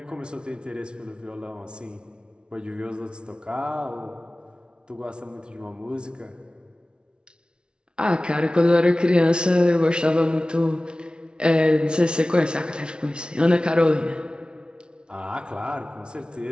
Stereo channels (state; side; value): late; left; 0.055 ms